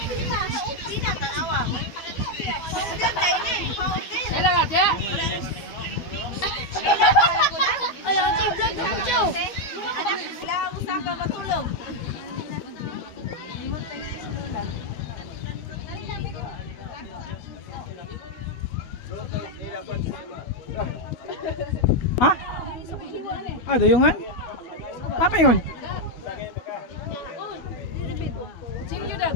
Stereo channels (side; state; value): right; late; 12 ms